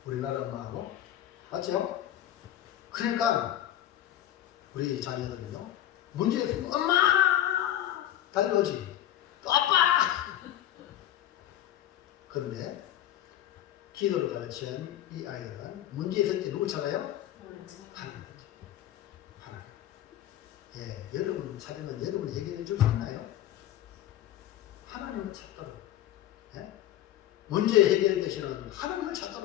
우리나라 엄마하고. 맞죠? 그러니까, 우리 자녀들은요, 문제 있으면 엄마! 달려오지. 또 아빠! 그런데, 기도를 가르치는 이 아이들은 문제 있을 때 누구 찾아요? 하나님. 하나님. 예, 여러분 찾으면 여러분 해결해 줄 수 있나요? 하나님을 찾도록. 예? 문제 해결 대신은 하나님을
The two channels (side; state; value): right; quieter; 12.4 dB